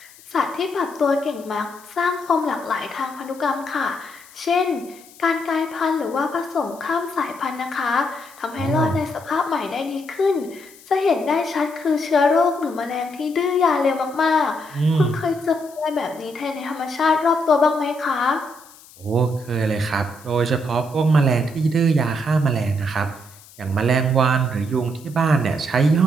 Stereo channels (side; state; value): left; noise; hiss, 23 dB below the sound